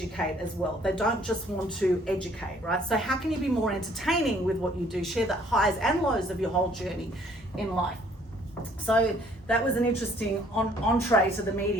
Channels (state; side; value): normal; both; correlation 0.60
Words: as well. They don't just want to educate, right? So how can you be more entertaining with what you do? Share the highs and lows of your whole journey in life. So that was an interesting entree to the